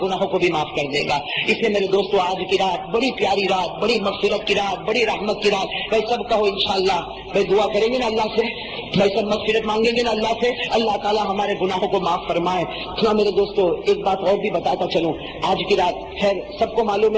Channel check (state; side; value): identical; both; correlation 1.00